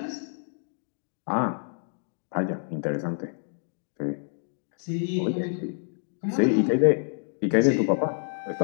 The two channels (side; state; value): right; silent; digital silence